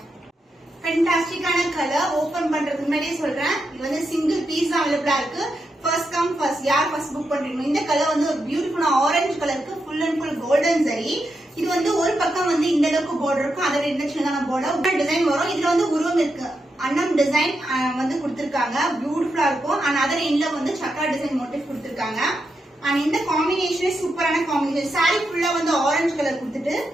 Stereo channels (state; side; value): normal; both; correlation 0.85